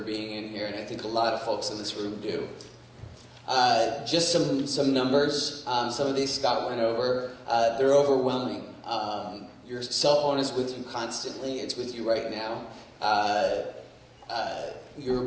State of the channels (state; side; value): identical; both; correlation 1.00